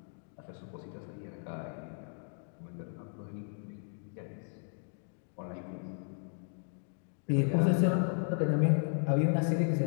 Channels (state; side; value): silent; right; 55 dB below the other